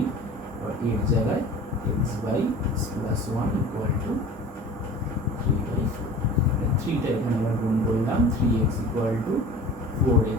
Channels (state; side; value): normal; both; correlation 0.41